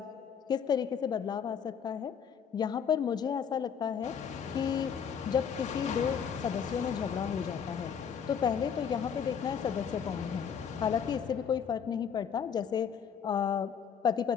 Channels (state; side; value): quieter; right; 7.4 dB